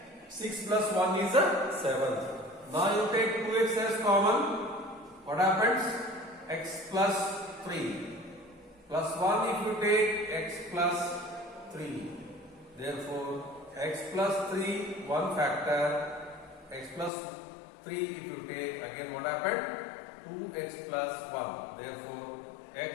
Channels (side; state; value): right; drops out; at 17.1 s